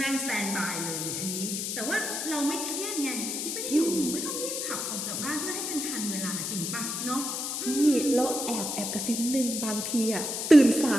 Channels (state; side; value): noise; left; hiss, 3 dB below the sound